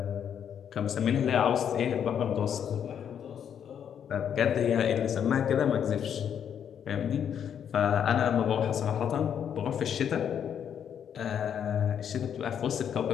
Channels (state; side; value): quieter; right; 8.6 dB